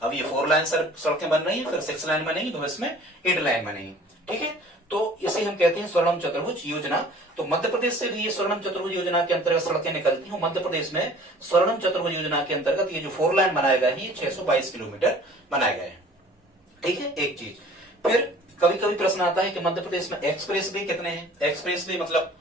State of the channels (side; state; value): both; normal; correlation 0.49